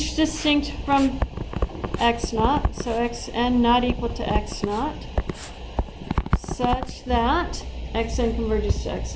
distinct from x naught, so xn not equal to x naught, such that xn converges to x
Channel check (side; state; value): both; identical; correlation 1.00